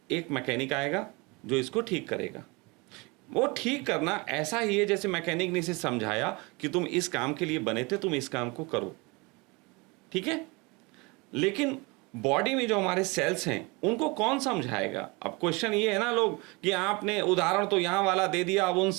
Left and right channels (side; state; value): left; quieter; 26.8 dB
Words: एक मैकेनिक आएगा जो इसको ठीक करेगा। वो ठीक करना ऐसा ही है जैसे मैकेनिक ने इसे समझाया कि तुम इस काम के लिए बने थे, तुम इस काम को करो, ठीक है। लेकिन बॉडी में जो हमारे सेल्स हैं उनको कौन समझाएगा? अब क्वेश्चन ये है ना लोग कि आपने उदाहरण तो यहाँ वाला दे दिया, अब उन